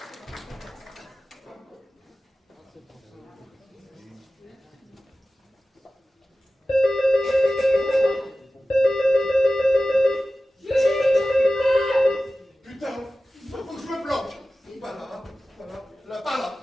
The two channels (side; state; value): both; normal; correlation 0.95